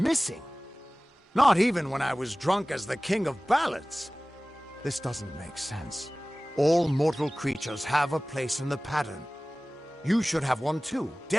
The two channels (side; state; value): both; normal; correlation 0.98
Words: Not even when I was drunk as the king of ballads. This doesn't make sense. All mortal creatures have a place in the pattern. You should have one too,